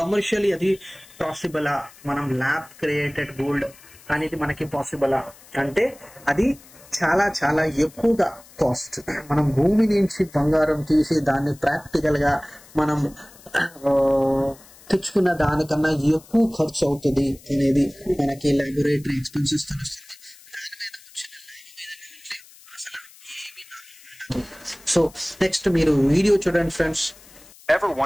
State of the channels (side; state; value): left; noise; hiss, 23 dB below the sound